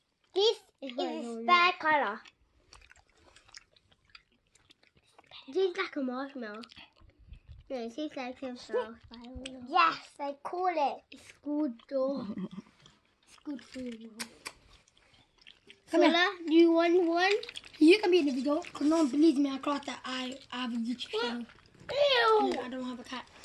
This is bad colour. It tastes like a marshmallow. No, it tastes like a flower. Yes, I call it. It's good though. It's good for you. Sola, do you want one? You can be in the video because no one believes me. I class that I have a YouTube channel. Ew! I don't have a cat.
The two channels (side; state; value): both; identical; correlation 1.00